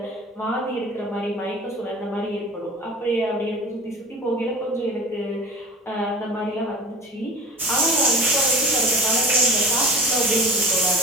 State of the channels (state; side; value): normal; both; correlation 0.39